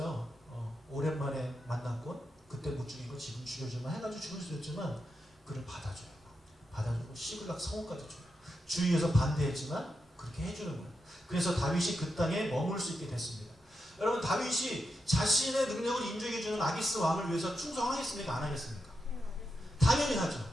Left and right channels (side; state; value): both; normal; correlation 0.86